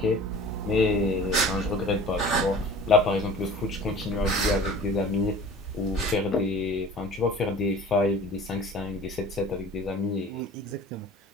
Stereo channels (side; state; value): both; normal; correlation 0.44